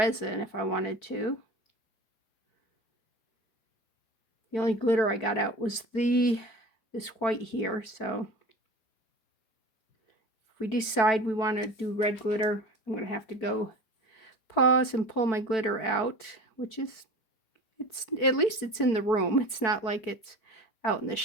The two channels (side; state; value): right; late; 4.5 ms